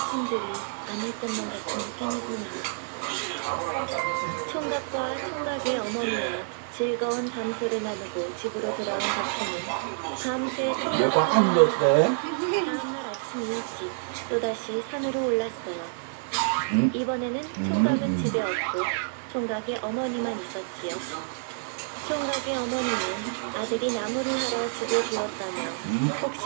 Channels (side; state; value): left; silent; 59 dB below the other